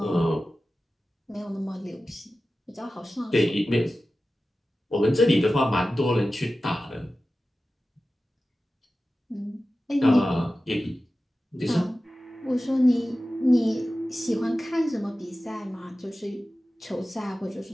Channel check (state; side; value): normal; both; correlation 0.95